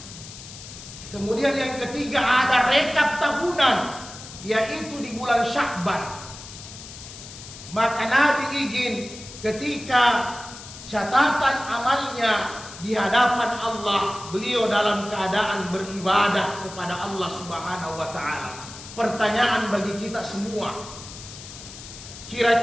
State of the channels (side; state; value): left; noise; hiss, 14 dB below the sound